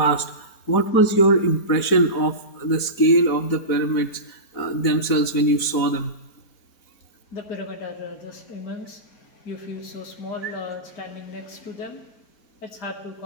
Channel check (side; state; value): right; late; 4.1 ms